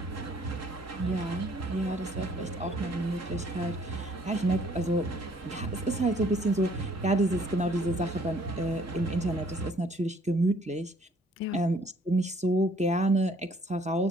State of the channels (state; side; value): normal; both; correlation 0.61